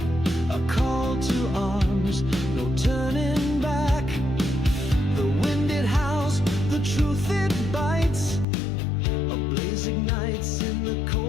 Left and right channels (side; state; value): right; drops out; at 8.5 s